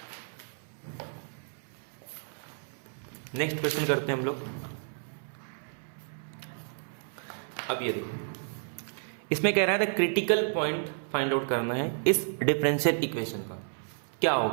नेक्स्ट क्वेश्चन करते हैं हम लोग। अब ये देखिए, इसमें कह रहा है क्रिटिकल पॉइंट फाइंड आउट करना है इस डिफरेंशियल इक्वेशन का। क्या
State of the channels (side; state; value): left; silent; 56 dB below the other